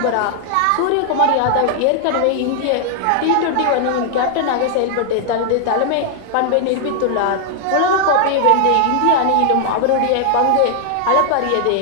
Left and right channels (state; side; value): different; both; correlation 0.00